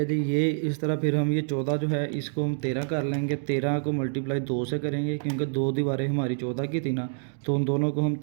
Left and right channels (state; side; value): silent; left; digital silence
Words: जी। ये इस तरह फिर हम ये 14 जो है इसको हम 13 कर लेंगे। 13 को मल्टीप्लाई 2 से करेंगे क्योंकि 2 दीवारें हमारी 14 की थी ना, तो उन दोनों को हम